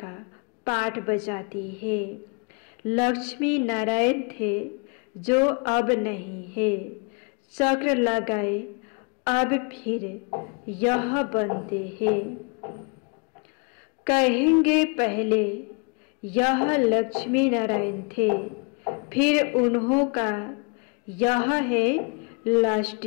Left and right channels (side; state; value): right; quieter; 35.1 dB